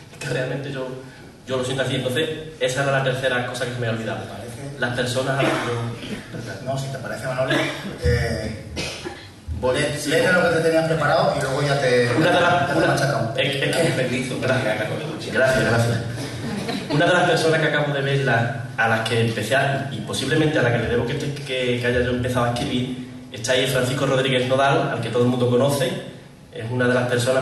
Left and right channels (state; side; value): identical; both; correlation 1.00